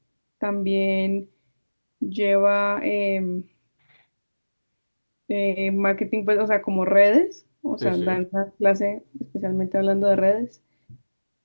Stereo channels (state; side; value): inverted; both; correlation -1.00